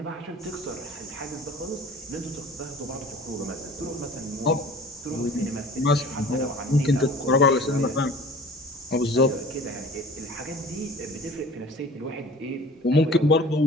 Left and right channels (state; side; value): normal; both; correlation 0.45